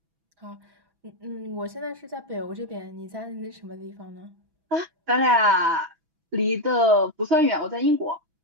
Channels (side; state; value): left; late; 6.1 ms